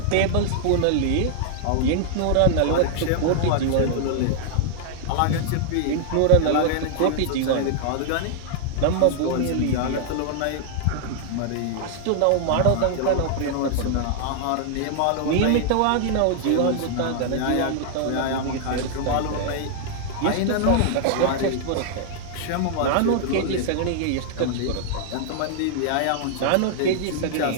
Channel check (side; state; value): both; different; correlation -0.01